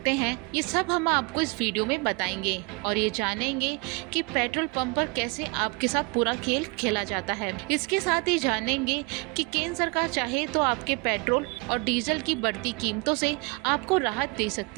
हैं, ये सब हम आपको इस वीडियो में बताएंगे और ये जानेंगे कि पेट्रोल पंप पर कैसे आपके साथ पूरा खेल खेला जाता है। इसके साथ ही जानेंगे कि केंद्र सरकार चाहे तो आपके पेट्रोल और डीजल की बढ़ती कीमतों से आपको राहत दे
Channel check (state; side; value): quieter; left; 28.5 dB